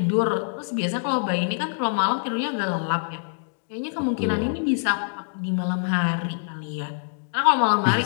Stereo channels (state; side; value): silent; right; 62 dB below the other